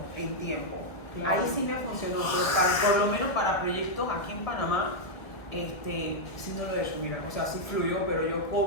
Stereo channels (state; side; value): late; right; 1.6 ms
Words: en tiempo. Claro. Ahí sí me funcionó, pero por lo menos para proyectos aquí en Panamá, sí no lo he hecho, mira, o sea, sí fluyó, pero yo